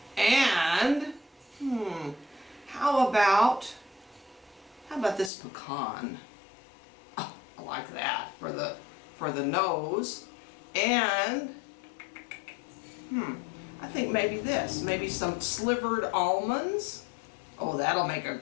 And, how about this pecan? Oh, I like that for the nose. And, I think maybe this, maybe some slivered almonds. Oh, that'll make a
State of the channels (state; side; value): drops out; right; at 5.3 s